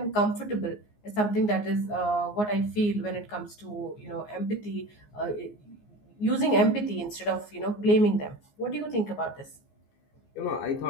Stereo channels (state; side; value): late; right; 14 ms